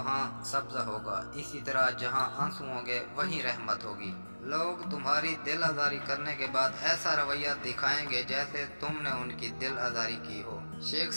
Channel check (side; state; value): both; inverted; correlation -1.00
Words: सब्जा होगा, इसी तरह जहाँ आंसू होंगे वहीं रहमत होगी। लोग तुम्हारी दिल आज़ारी करने के बाद ऐसा रवैया दिखाएंगे जैसे तुमने उनकी दिल आज़ारी की हो। शेख